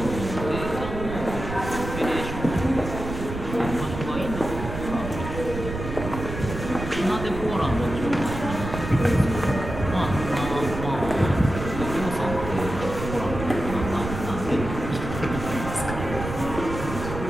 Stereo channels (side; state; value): right; noise; rumble, 7 dB below the sound